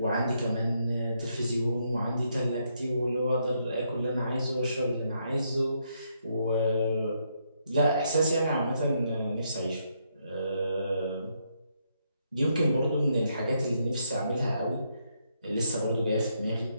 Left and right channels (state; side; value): inverted; both; correlation -0.77